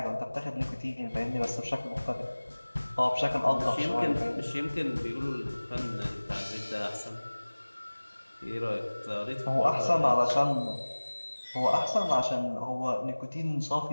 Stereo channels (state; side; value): inverted; both; correlation -1.00